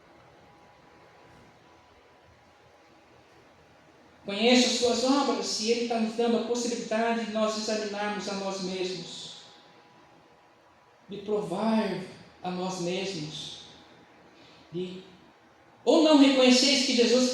Conheça as suas obras, e Ele está nos dando a possibilidade de nós examinarmos a nós mesmos, de provar a nós mesmos, ou não reconheceis que Jesus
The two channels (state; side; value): identical; both; correlation 1.00